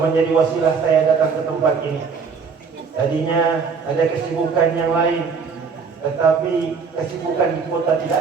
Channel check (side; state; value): left; quieter; 5.5 dB